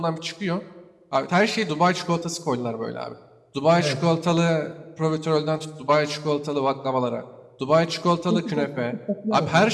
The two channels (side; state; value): both; identical; correlation 1.00